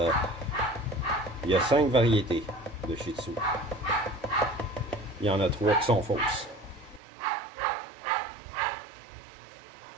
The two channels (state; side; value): drops out; left; at 7.0 s